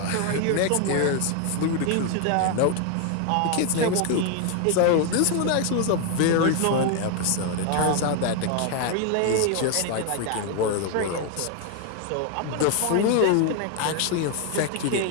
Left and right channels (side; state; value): both; different; correlation 0.01